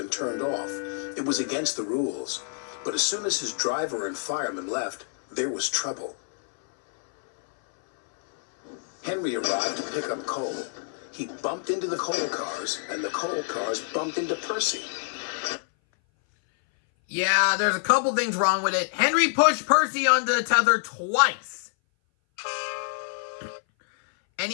turned off. It was against the rules. But as soon as his driver and fireman left, there was trouble. Henry arrived to pick up coal. He bumped into the coal cars, and the coal cars bumped into Percy. Yeah, there's a couple things wrong with it. Henry pushed Percy onto the tether twice. And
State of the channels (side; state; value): right; silent; 58 dB below the other